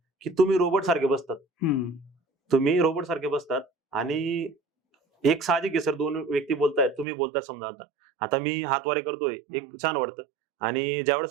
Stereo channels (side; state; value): left; drops out; at 7.1 s